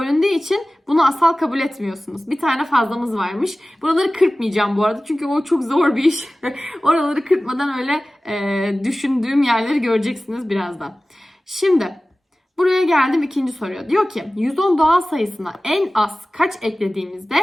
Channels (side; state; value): both; normal; correlation 0.97